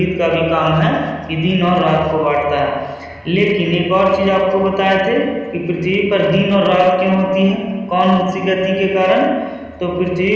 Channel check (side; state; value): both; identical; correlation 1.00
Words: का भी काम है कि दिन और रात को बांटता है। लेकिन एक और चीज आपको बताए थे कि पृथ्वी पर दिन और रात क्यों होती है, कौन सी गति के कारण? तो पृथ्वी